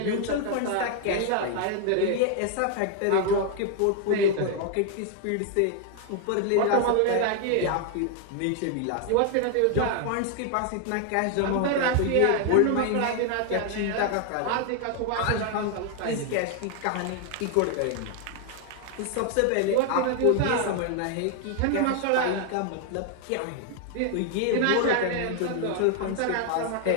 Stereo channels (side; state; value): both; different; correlation 0.00